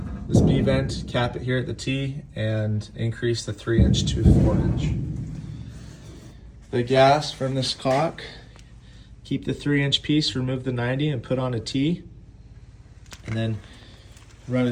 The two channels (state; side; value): identical; both; correlation 1.00